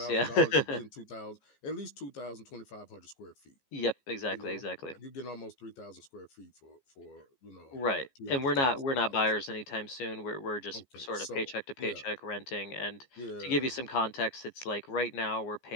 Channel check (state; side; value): late; right; 15 ms